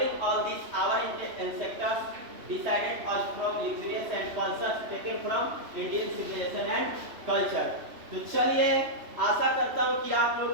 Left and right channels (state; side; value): late; left; 3.1 ms